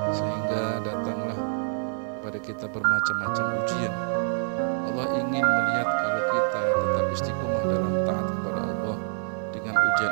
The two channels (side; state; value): left; silent; digital silence